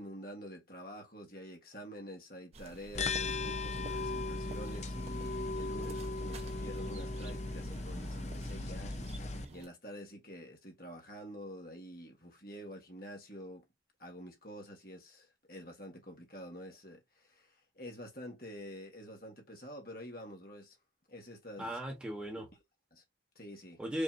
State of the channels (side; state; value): both; normal; correlation 0.56